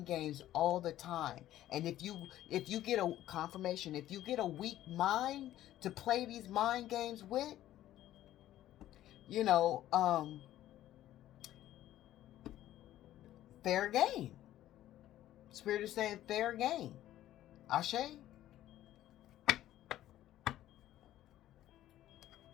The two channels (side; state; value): right; quieter; 13.4 dB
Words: games all the time. And if you get a confirmation, if you get a weak mind to play these mind games with, you know, fair game. Spirit is saying fair game. Ashe?